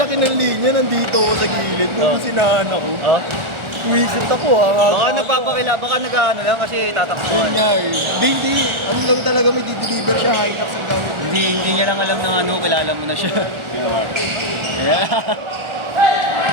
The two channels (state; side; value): late; left; 1.4 ms